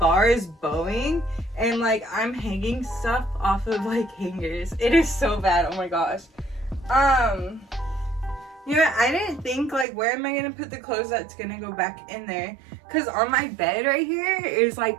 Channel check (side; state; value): left; drops out; at 9.9 s